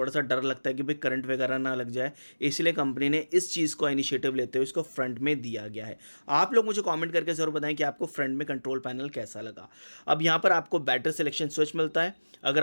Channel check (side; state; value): both; inverted; correlation -1.00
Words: सा डर लगता है कि भाई करंट वगैरह ना लग जाए, इसलिए कंपनी ने इस चीज़ को इनिशिएटिव लेते हुए इसको फ्रंट में दिया गया है। आप लोग मुझे कमेंट करके ज़रूर बताएं कि आपको फ्रंट में कंट्रोल पैनल कैसा लगा। अब यहाँ पर आपको बैटरी सिलेक्शन स्विच मिलता है।